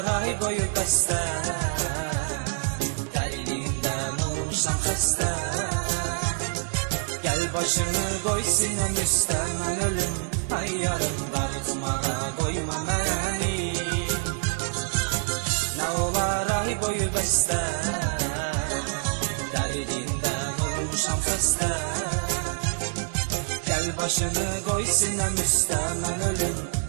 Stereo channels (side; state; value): left; silent; 61 dB below the other